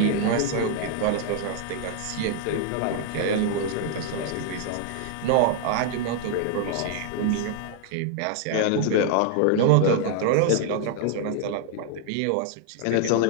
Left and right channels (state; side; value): different; both; correlation 0.00